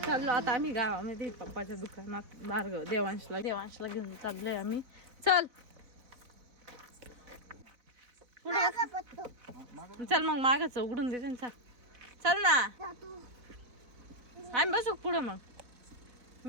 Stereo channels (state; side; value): late; left; 4.0 ms